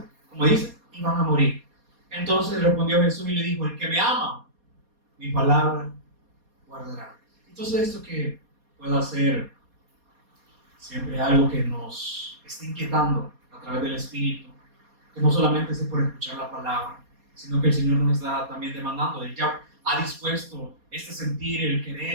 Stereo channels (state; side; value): late; left; 4.2 ms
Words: como dice, iban a morir. Entonces respondió Jesús y le dijo: el que me ama, mi palabra guardará. Entonces, esto que pueda ser siempre algo que nos esté inquietando a través del Espíritu, que no solamente es por escuchar la palabra, sino que el Señor nos está también demandando. Él ya ha dispuesto sentir, el